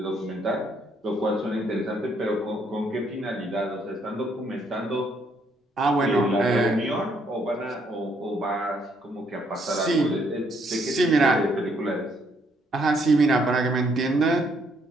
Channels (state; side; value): normal; both; correlation 0.70